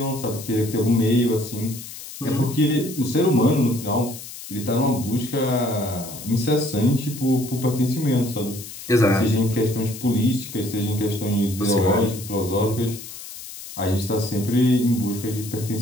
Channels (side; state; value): left; noise; hiss, 13 dB below the sound